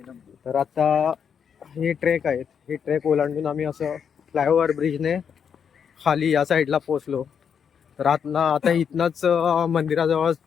तर आता हे ट्रेक आहेत, हे ट्रेक ओलांडून आम्ही असं फ्लायओव्हर ब्रिजने खाली या साईडला पोहोचलो. तर आता इथनंच मंदिराजवळ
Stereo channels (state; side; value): quieter; right; 7.3 dB